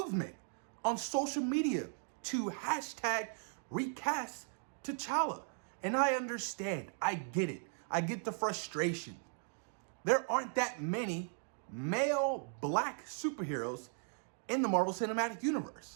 on social media to hashtag recast T'Challa. And I understand. I get it. I get the frustration. There aren't that many male black superheroes in the Marvel Cinematic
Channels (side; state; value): left; silent; 53 dB below the other